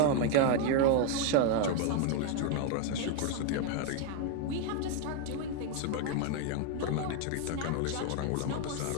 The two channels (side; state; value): both; different; correlation 0.00